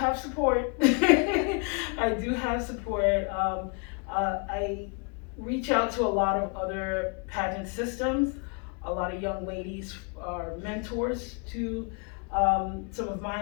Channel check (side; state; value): right; quieter; 35.4 dB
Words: support. I do have support. I reach out to a lot of other pageant systems. A lot of young ladies are mentors to some of